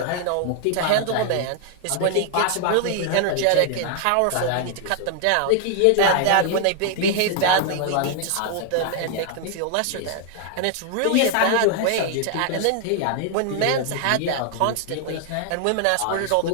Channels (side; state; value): both; different; correlation 0.00